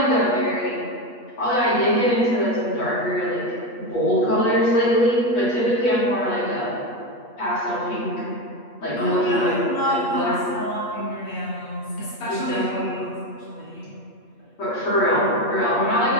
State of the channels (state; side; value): late; right; 8.4 ms